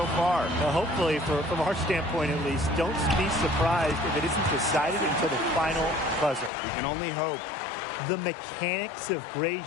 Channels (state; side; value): drops out; right; at 6.5 s